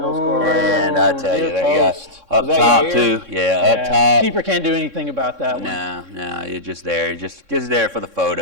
goal scorer? And I tell you, near that guy post. up Was that top Yair? too. Yeah, up top. Keeper can't do anything about that one. No, you're just there. You're just there for the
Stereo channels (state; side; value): late; left; 3.6 ms